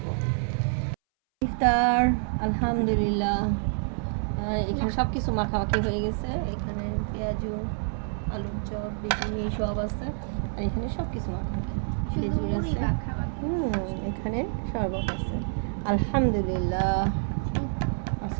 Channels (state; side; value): silent; left; 60 dB below the other